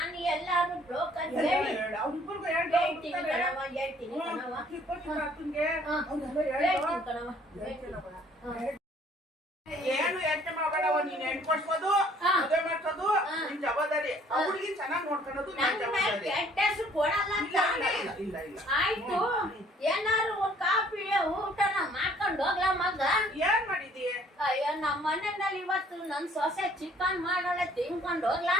ಎಲ್ಲಾರು ಬ್ರೋಕರ್ ಹೇಳಿ ಅವ್ರಿಬ್ರಿಗೂ ಹೇಳ್ತೀನಿ ಕಣವ ಹೇಳ್ತೀನಿ ಕಣವ ಹೇಳ್ತೀನಿ ಕಣವ ಏನು ಯೋಚನೆ ಮಾಡಬೇಡವ ನೀನ್ ಹೆಣ್ ಕೊಡ್ಸೋದು ಮದುವೆ ಮಾಡ್ಸೋದು ನಿನ್ ಜವಾಬ್ದಾರಿ ಆ ಹುಡುಗಿ ಚೆನ್ನಾಗಿ ನೋಡ್ಕೊಳ್ಳೋದು ನಿನ್ ಜವಾಬ್ದಾರಿ ಕೆಟ್ಟ ಹೆಸರು ಕೊಡಲ್ಲ ಅಂತ ಇಲ್ಲ ಇಲ್ಲ ಇಲ್ಲ ಆಯ್ತು ಏನಾರು ಒಂದ್ ಕಾಫಿ ಊಟನ ಮಾಡ್ಕೊಂಡು ಹೋಗ್ಲಾ ಮಗ ಏನ್ ಮಾಡಿದಿ ಅಯ್ಯೋ ನಮ್ಮ ಮನೆಯಲ್ಲಿ ಇವತ್ತು ನನ್ ಸೊಸೆ ಚಿಕನ್ ಮಾಡೋಳೆ ತಿನ್ಕೊಂಡು ಹೋಗ್ಲಾ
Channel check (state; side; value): normal; both; correlation 0.59